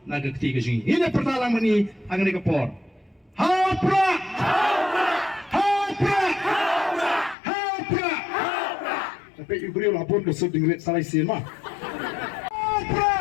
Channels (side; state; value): right; drops out; at 7.4 s